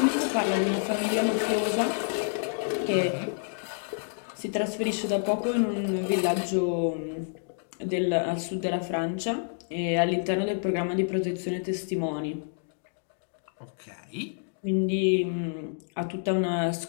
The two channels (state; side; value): silent; right; digital silence